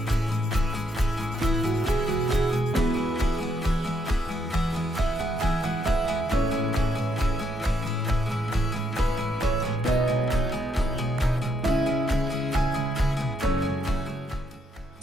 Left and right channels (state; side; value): normal; both; correlation 0.74